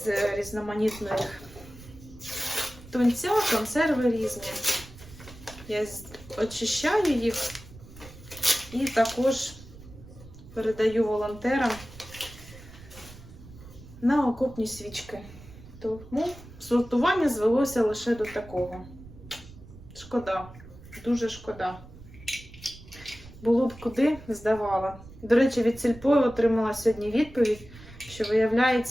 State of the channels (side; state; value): right; noise; rumble, 18 dB below the sound